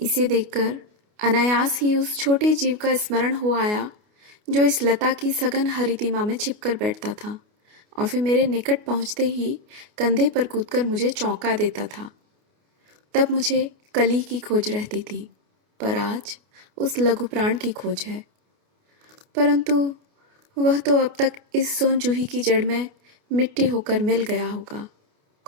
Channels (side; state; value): left; late; 29 ms